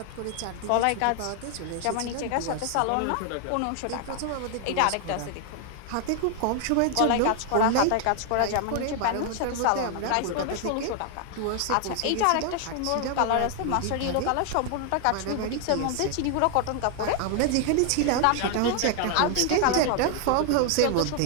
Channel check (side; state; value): both; different; correlation 0.00